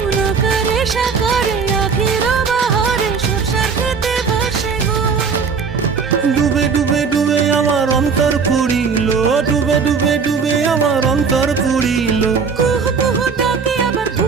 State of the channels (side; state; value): left; quieter; 5.6 dB